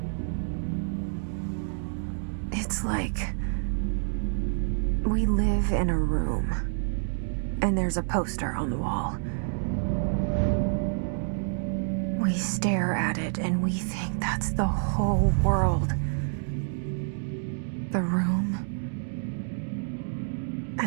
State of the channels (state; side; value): silent; left; digital silence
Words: It's like we live in a room, and there's a poster on the wall. We stare at it and we think that's the whole world. The room